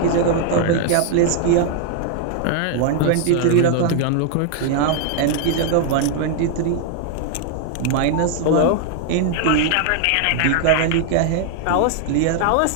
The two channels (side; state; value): both; different; correlation 0.00